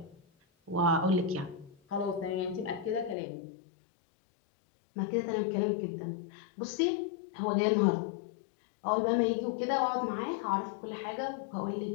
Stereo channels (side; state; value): right; drops out; at 3.2 s